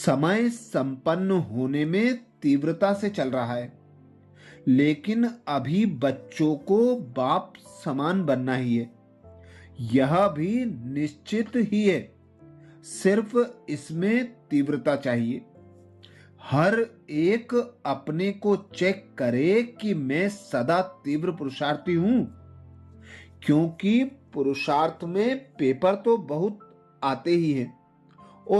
संपन्न होने में तीव्रता से चल रहा है, लेकिन अभी बच्चों को बाप समान बनना ही है। यह भी निश्चित ही है, सिर्फ इसमें तीव्रता चाहिए। हर एक अपने को चेक करे कि मैं सदा तीव्र पुरुषार्थी हूं, क्योंकि पुरुषार्थ में पेपर तो बहुत आते ही हैं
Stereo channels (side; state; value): both; identical; correlation 1.00